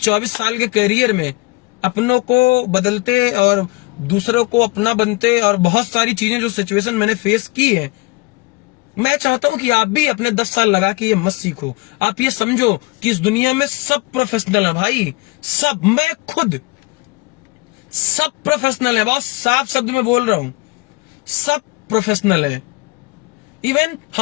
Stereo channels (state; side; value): quieter; right; 24.4 dB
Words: 24 साल के करियर में, अपनों को बदलते और दूसरों को अपना बनते, और बहुत सारी चीजें जो सिचुएशन मैंने फेस की है, मैं चाहता हूं कि आप भी अपने 10 साल लगा के ये मत सीखो। आप ये समझो कि इस दुनिया में सब प्रोफेशनल है भाई, सब। मैं खुद सब प्रोफेशनल है, बहुत साफ शब्द में बोल रहा हूं, सब प्रोफेशनल है। इवन